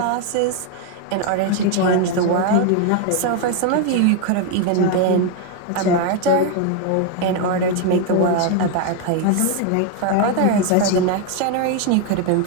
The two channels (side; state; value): both; different; correlation 0.01